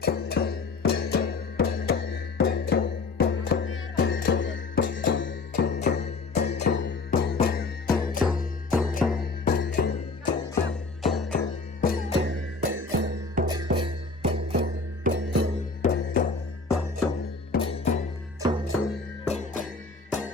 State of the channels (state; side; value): quieter; right; 4.0 dB